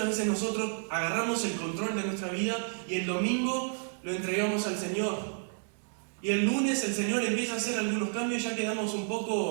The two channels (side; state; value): left; silent; 57 dB below the other